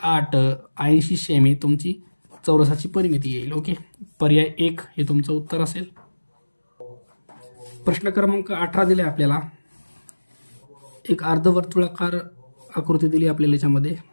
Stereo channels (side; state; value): both; inverted; correlation -1.00